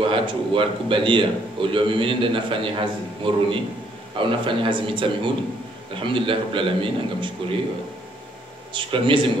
hatu walikubalia ulio mimi nenda nafanya hazi moruni au nafanya hazi mitamihudi alhamdulillah rabbil alamin ngamshukurie shukrani Mwenyezi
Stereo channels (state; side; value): normal; both; correlation 0.68